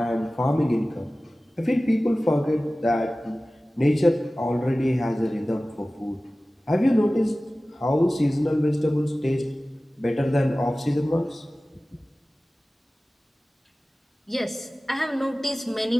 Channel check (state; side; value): normal; both; correlation 0.97